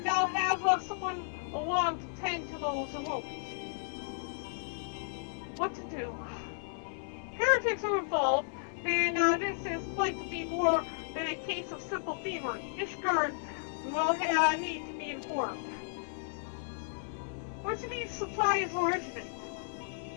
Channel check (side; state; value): right; silent; 55 dB below the other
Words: I'll have someone along to tend to those wounds. What to do? Heretics are involved, and this is likely to be more than a case of simple thievery. Ishgard will need to be informed. Where do these supplies originate?